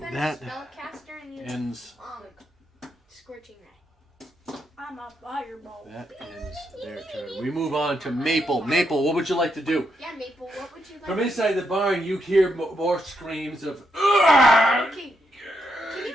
That a spellcaster and used ends. scorching ray. I'm a fireball. That ends their turn. We move on to Maple. Maple, what would you like to do? Yeah, Maple, what would you like? From inside the barn, you hear more screams of. Okay. Can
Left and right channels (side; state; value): both; normal; correlation 0.80